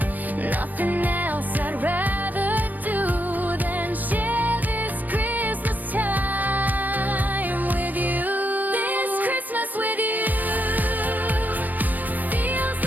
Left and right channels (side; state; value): left; late; 0.083 ms